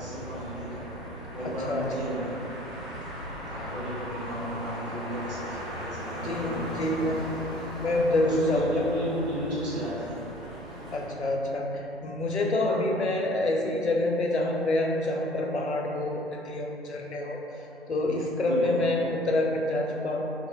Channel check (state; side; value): normal; both; correlation 0.54